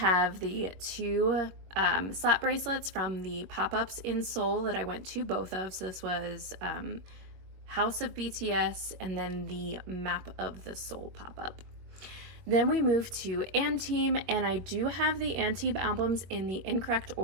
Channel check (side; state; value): left; late; 21 ms